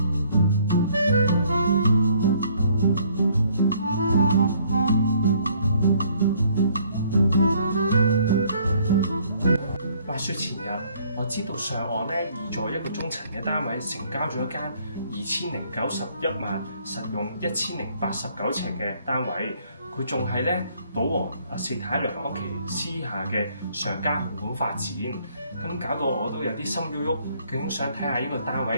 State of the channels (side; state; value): both; inverted; correlation -0.63